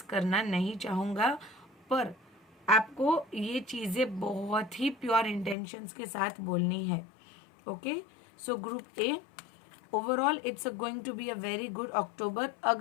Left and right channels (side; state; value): right; drops out; at 5.6 s